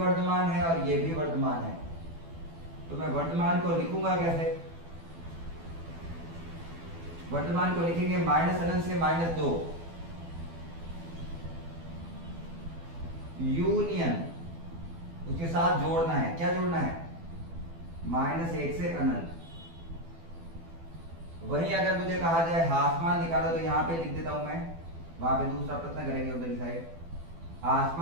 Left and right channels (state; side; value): late; left; 12 ms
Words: है और ये भी वर्धमान है। तो मैं वर्धमान को लिखूंगा कैसे? वर्धमान को लिखेंगे माइनस अनंत से -2 यूनियन, उसके साथ जोड़ना है। क्या जोड़ना है? -1 से अनंत। वहीं अगर मुझे कहा जाए ह्रासमान निकालो तो यहाँ पे लिख देता हूं मैं, वहां पे दूसरा प्रश्न करेंगे उधर साइड।